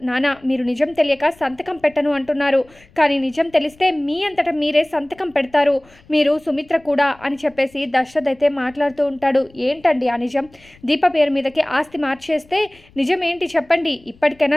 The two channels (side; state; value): left; noise; rumble, 28 dB below the sound